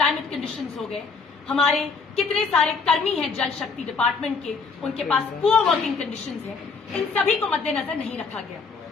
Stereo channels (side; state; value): right; quieter; 4.8 dB